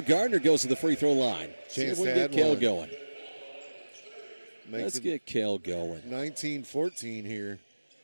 Gardner goes to the free throw line. See if we can get Cale going. Let's get Cale going. 19-14 here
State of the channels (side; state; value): both; inverted; correlation -1.00